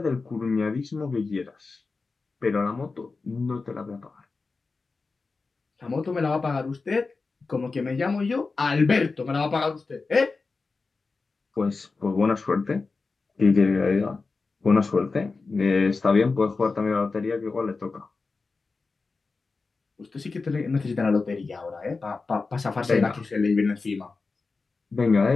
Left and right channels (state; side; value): quieter; right; 4.1 dB